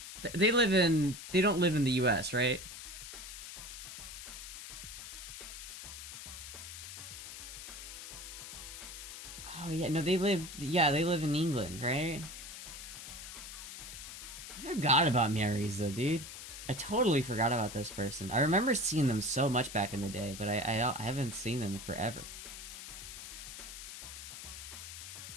They live in. They don't live in the U.S., right? Oh yeah, no, they live. Yeah, they live in England, right? I forgot about Miariza, dude. I totally forgot about this person. I remember seeing them so much back in the day, but I haven't seen them in forever.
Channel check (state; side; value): noise; left; hiss, 11 dB below the sound